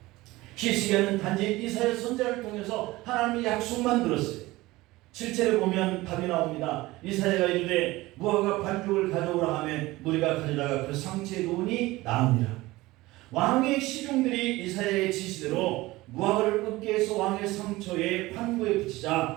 히스기야는 단지 이사야 선지자를 통해서 하나님의 약속만 들었어요. 7절에 보면 답이 나옵니다. 이사야가 이르되 무화과 반죽을 가져오라 하며 무리가 가져다가 그 상체에 놓으니 나으니라. 왕의 시중들이 이사야의 지시대로 무화과를 끄게 해서 왕의 상처에 판구에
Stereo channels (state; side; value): quieter; left; 19.4 dB